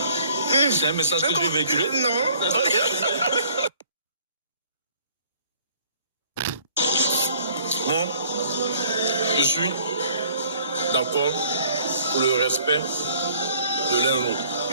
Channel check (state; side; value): inverted; both; correlation -0.57